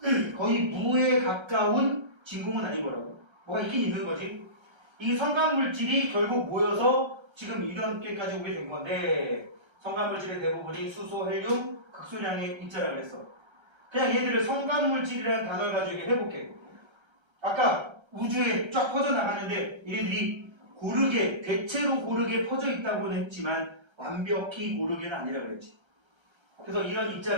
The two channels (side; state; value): left; late; 1.3 ms